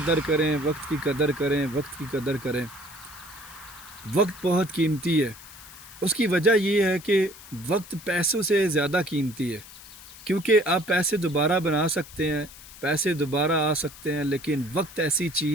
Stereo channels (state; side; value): noise; left; hiss, 18 dB below the sound